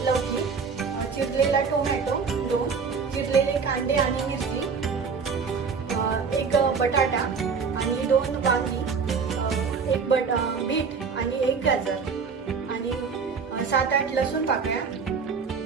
लौकी, चिरलेला टोमॅटो, 2 चिरलेले कांदे आणि मिरची, 1 बटाटा आणि 2 वांगी, 1 बीट आणि 1 गाजर आणि 7-8 लसूण पाकळ्या,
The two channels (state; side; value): quieter; left; 5.5 dB